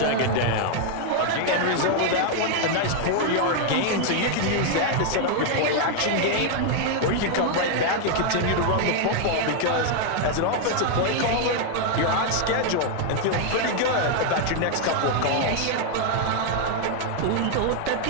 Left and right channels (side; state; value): both; different; correlation 0.00